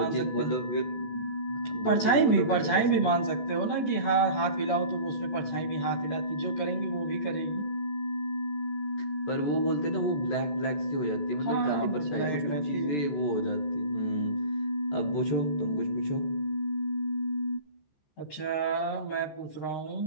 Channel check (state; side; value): late; right; 14 ms